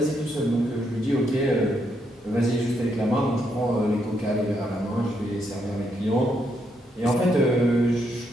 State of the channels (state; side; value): normal; both; correlation 0.77